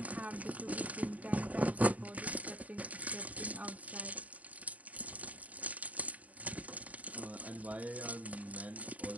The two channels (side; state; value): left; late; 0.071 ms